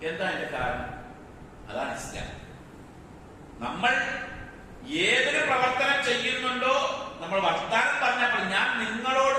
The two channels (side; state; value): both; identical; correlation 1.00